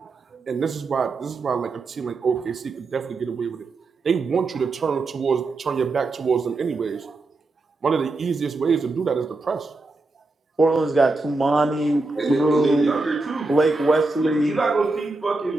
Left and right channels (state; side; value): quieter; left; 3.4 dB